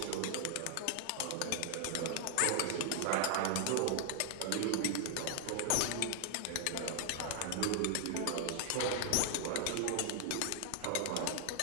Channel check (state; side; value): different; both; correlation 0.00